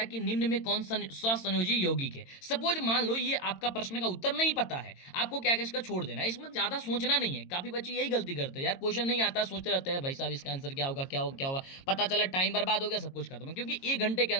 कि निम्न में कौन सा स्वसंयोजी यौगिक है। सपोज मान लो ये आपका प्रश्न का उत्तर नहीं पता है, आपको क्या क्या इसका छोड़ देना है, इसमें ज्यादा सोचना नहीं है। काफी बच्चे यही गलती करते हैं यार, क्वेश्चन नहीं आता सोचते रहते हैं भाई साहब इसका आंसर क्या होगा क्या होगा क्या होगा, पता चला टाइम बर्बाद हो गया, सब कुछ खत्म। क्योंकि 1 घंटे के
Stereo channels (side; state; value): right; late; 22 ms